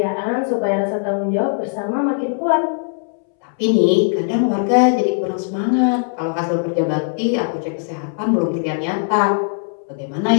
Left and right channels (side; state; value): right; silent; 66 dB below the other